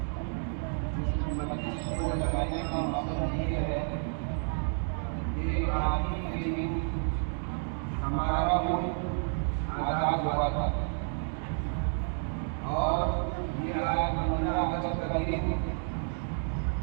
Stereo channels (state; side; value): silent; left; 57 dB below the other